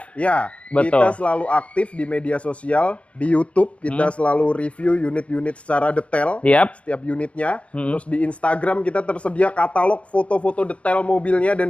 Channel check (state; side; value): late; right; 0.062 ms